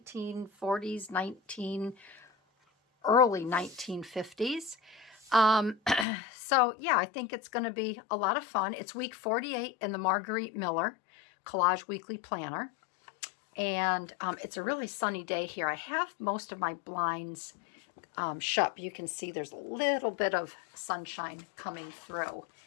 early 1950s. So yeah, I think it's going to be a lot of fun. It's week 48 in the Margarete Miller Collage Weekly Planner, and it's a really sunny day here. I have most of my blinds shut. You can see there's a little bit of sunshine coming through,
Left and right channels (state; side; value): drops out; right; at 6.1 s